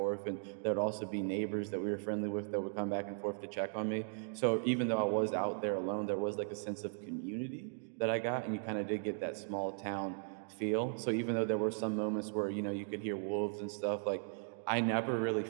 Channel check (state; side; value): silent; left; digital silence